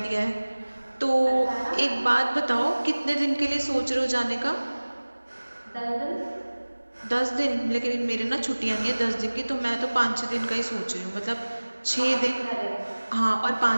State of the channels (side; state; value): both; inverted; correlation -1.00